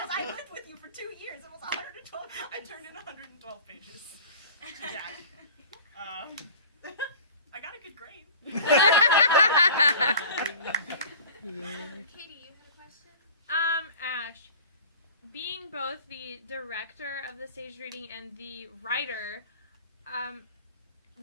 I lived with you for 2 years. It was 112 pages. I turned in 112 pages to Jack. I got a good grade. Katie, you had a question? Ashe, being both the director of the stage reading and the writer,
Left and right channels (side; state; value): both; inverted; correlation -0.41